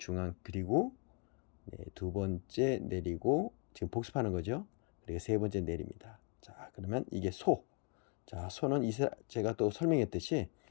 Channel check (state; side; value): quieter; right; 33.9 dB